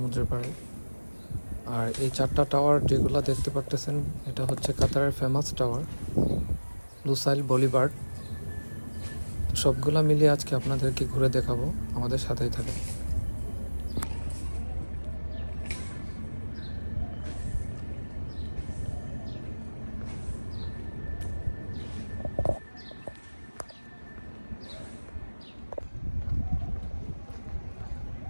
পাড়ে। আর এই 4টা টাওয়ার যেগুলো দেখতে পারতেছেন, এটা হচ্ছে কাতারের ফেমাস টাওয়ার লুসাইল বলিভার্ড। তো সবগুলা মিলিয়ে আজকে আপনাদেরকে ঘুরে দেখাবো, আমাদের সাথেই থাকে।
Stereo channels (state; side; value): inverted; both; correlation -1.00